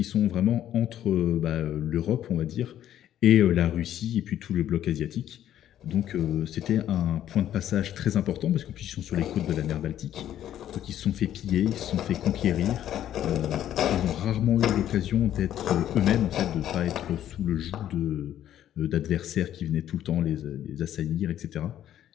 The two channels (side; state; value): right; quieter; 11.4 dB